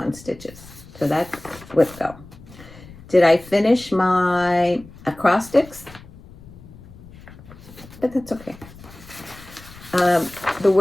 Stitches. So that's WIPGO. Did I finish my acrostics? But that's okay. The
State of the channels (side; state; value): left; noise; rumble, 19 dB below the sound